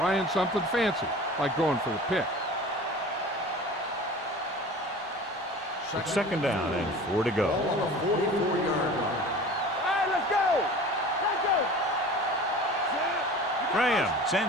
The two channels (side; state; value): both; normal; correlation 0.40